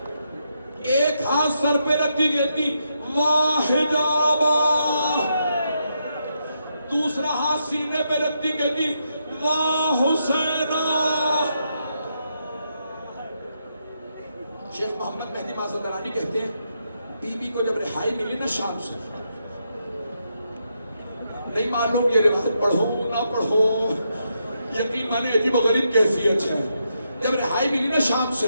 ایک ہاتھ سر پہ رکھ کے کہتی واہ حجابا, دوسرا ہاتھ سینے پہ رکھتی کہتی واہ حسینہ. شیخ محمد مہدی مازندرانی کہتے ہیں بی بی کو جب رہائی ملی نا شام سے, نہیں معلوم یہ روایت پڑھو نہ پڑھو, یقین مانے عجیب و غریب کیفیت ہے. جب رہائی ملی نا شام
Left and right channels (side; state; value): both; inverted; correlation -0.81